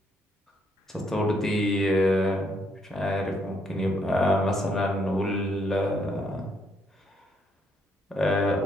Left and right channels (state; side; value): normal; both; correlation 0.73